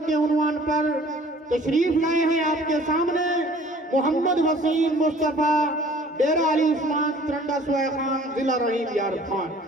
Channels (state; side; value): normal; both; correlation 0.51